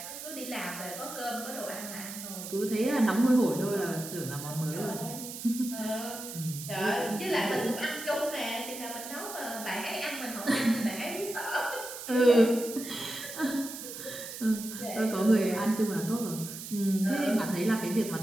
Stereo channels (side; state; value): right; noise; hiss, 10 dB below the sound